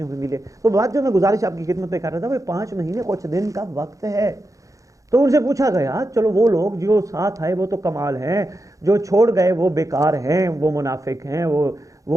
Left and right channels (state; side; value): late; left; 0.16 ms